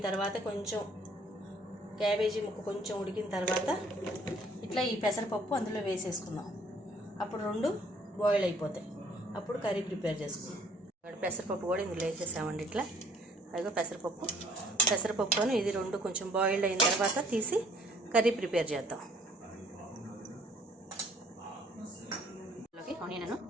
తర్వాత కొంచెం క్యాబేజీ ముక్క కొంచెం ఉడికిన తర్వాత ఇట్లా ఈ పెసరపప్పు అందులో వేసేసుకుందాం. అప్పుడు రెండు బాయిల్ అయిపోతాయి. అప్పుడు కర్రీ ప్రిపేర్ చేసుకుందాం. పెసరపప్పు కూడా ఇందులో వేసేసామండి. ఇట్లా అదిగో పెసరపప్పును ఇది రెండు కొంచెం బాయిల్డ్ అయిన తర్వాత తీసి కర్రీ ప్రిపేర్ చేద్దాం. ఆనియన్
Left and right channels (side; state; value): both; normal; correlation 0.59